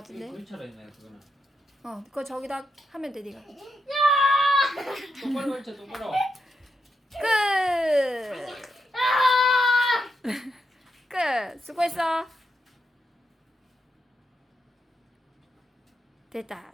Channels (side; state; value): both; normal; correlation 0.83